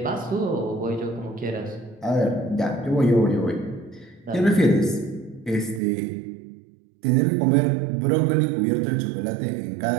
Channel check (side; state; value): left; drops out; at 5.8 s